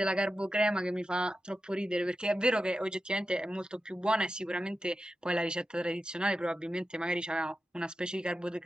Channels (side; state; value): both; normal; correlation 0.91